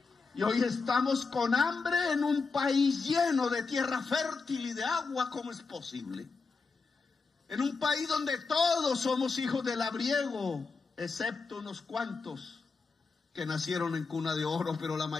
Y hoy estamos con hambre en un país lleno de tierra fértil y de agua. ¿Cómo es posible? En un país donde todos somos hijos del labriego, excepto unos cuantos que nacieron en cuna de oro, pero la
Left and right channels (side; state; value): right; quieter; 4.5 dB